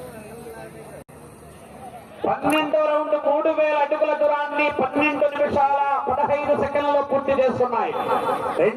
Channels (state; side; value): identical; both; correlation 1.00